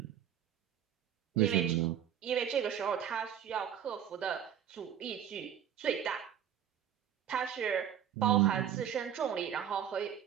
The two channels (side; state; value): left; quieter; 9.5 dB